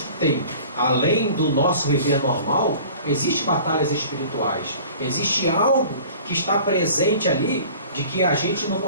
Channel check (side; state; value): both; inverted; correlation -0.45